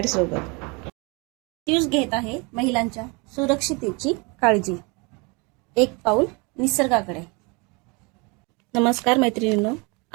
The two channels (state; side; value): quieter; left; 29.3 dB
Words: प्रत्युष घेत आहे महिलांच्या सुरक्षिततेची काळजी. एक पाऊल निसर्गाकडे. नमस्कार मैत्रिणींनो,